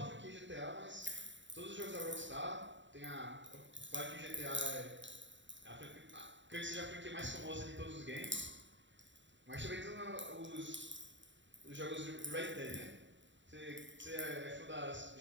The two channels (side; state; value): left; late; 0.54 ms